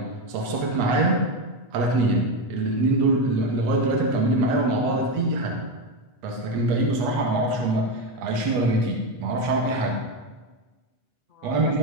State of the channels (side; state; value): left; late; 8.2 ms